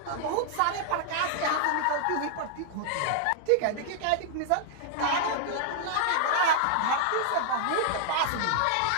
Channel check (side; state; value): both; different; correlation -0.01